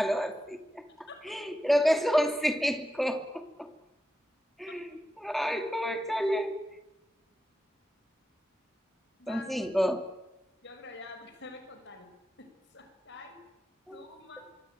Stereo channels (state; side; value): normal; both; correlation 0.90